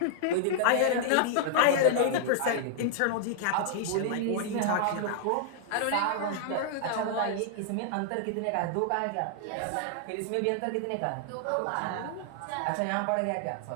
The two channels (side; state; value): both; different; correlation -0.01